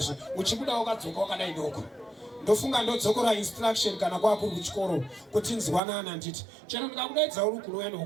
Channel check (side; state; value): left; drops out; at 5.8 s